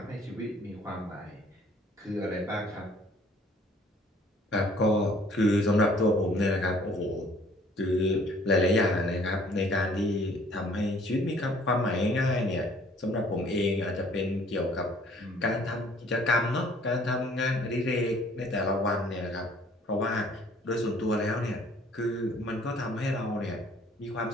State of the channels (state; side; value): normal; both; correlation 0.58